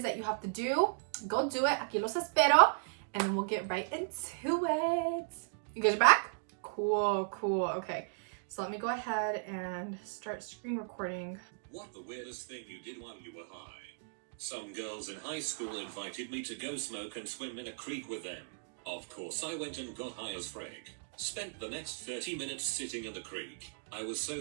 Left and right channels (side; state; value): left; silent; digital silence